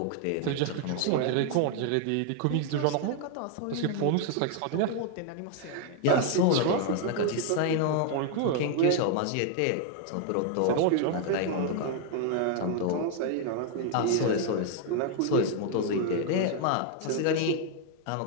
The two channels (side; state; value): both; different; correlation 0.00